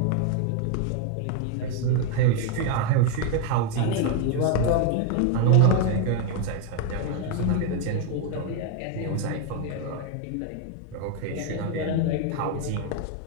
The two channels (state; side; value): different; both; correlation 0.01